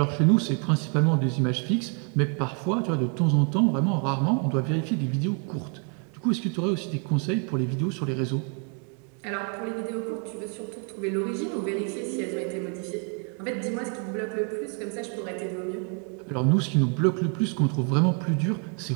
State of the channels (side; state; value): left; quieter; 37.9 dB